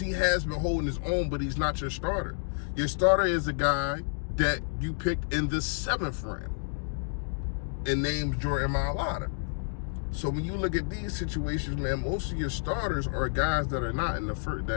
has been holding his own, but he's not your starter. Your starter is a guy that you picked in the 7th round and named Jordan Mailata. So when you look at these situations, man, most of your starters are guys that are not in the first,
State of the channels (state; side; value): silent; right; digital silence